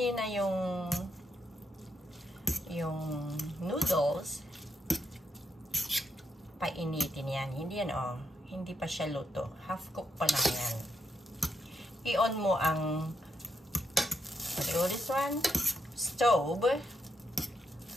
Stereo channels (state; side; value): normal; both; correlation 0.80